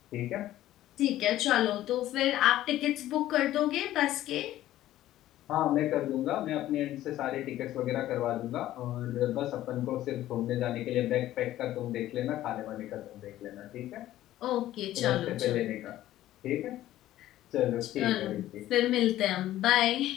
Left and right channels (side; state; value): right; quieter; 14.0 dB